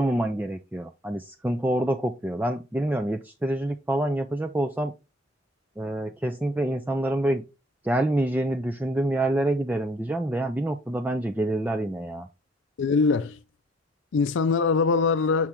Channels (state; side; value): normal; both; correlation 0.59